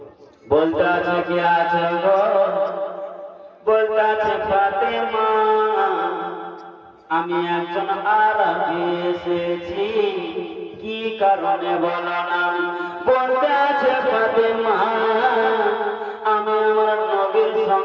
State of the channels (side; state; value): both; identical; correlation 1.00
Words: বলতে আছে কি আছে গো, বলতে আছে ফাতেমা আমি একজন আরবি এসেছি, কি কারণে বলো না। বলতে আছে ফাতেমা আমি আমার নবীর